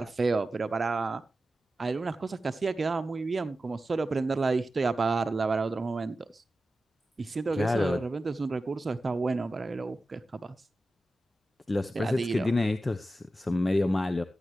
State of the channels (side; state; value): both; normal; correlation 0.93